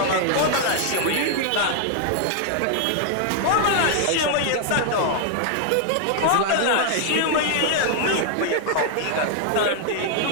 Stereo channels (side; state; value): both; different; correlation 0.00